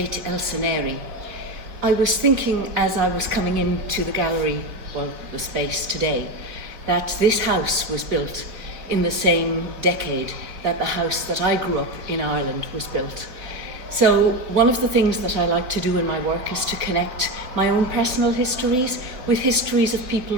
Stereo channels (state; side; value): late; left; 3.8 ms